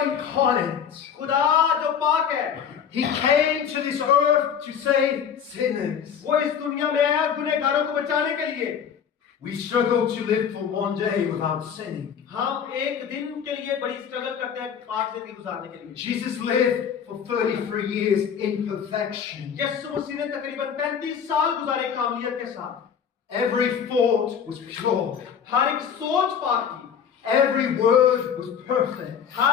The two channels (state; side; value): quieter; right; 7.8 dB